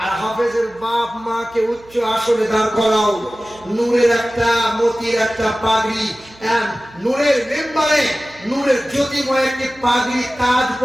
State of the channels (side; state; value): right; noise; hum, 26 dB below the sound